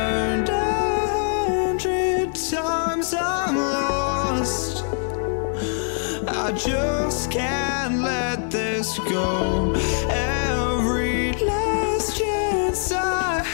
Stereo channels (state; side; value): silent; right; 58 dB below the other